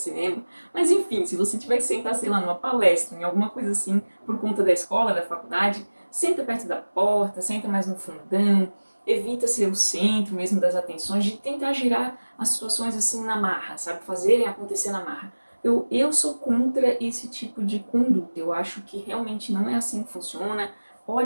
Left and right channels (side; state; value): both; inverted; correlation -1.00